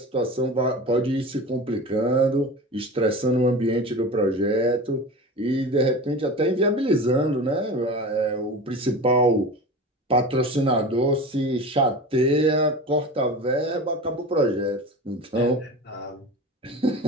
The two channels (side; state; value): both; normal; correlation 0.31